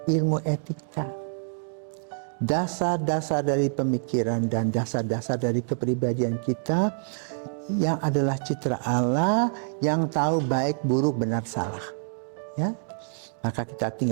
ilmu etika, dasar-dasar dari pemikiran dan dasar-dasar dari kepribadian kita yang adalah citra Allah yang tahu baik, buruk, benar, salah. Ya, maka kita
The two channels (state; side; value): silent; left; digital silence